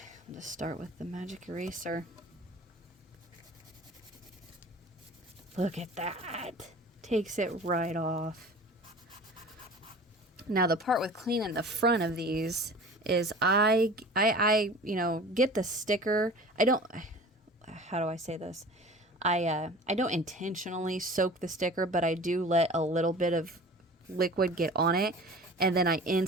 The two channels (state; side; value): normal; both; correlation 0.41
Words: start with the magic eraser. Look at that. Takes it right off. Now the part with cleaning the front of these is I get the sticker. How do I say this? I don't intentionally soak the sticker, but I do let a little bit of liquid get on it, and then I